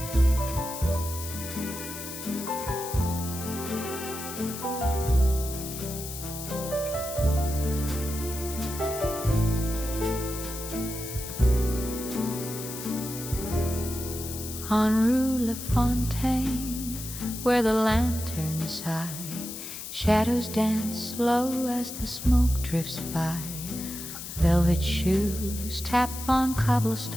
On Rue Lafontaine, where the lanterns high, shadows dance low as the smoke drifts by. Velvet shoes tap on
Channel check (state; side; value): noise; left; hiss, 9 dB below the sound